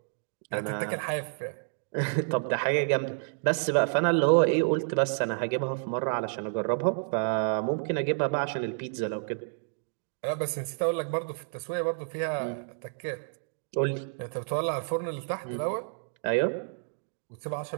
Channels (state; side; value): silent; left; digital silence